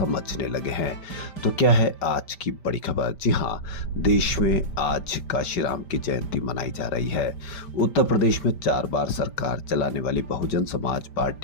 लगे हैं। तो क्या है आज की बड़ी खबर? जी हाँ, देश में आज काशीराम की जयंती मनाई जा रही है। उत्तर प्रदेश में 4 बार सरकार चलाने वाली बहुजन समाज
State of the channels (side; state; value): right; late; 5.1 ms